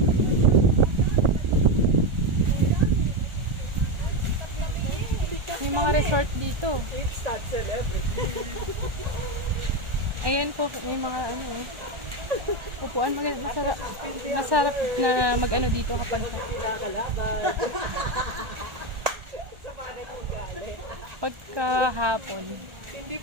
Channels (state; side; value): late; left; 1.4 ms